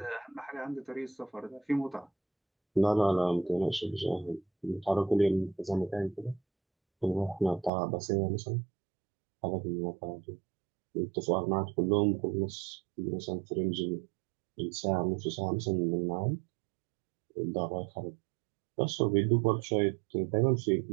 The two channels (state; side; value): drops out; left; at 7.7 s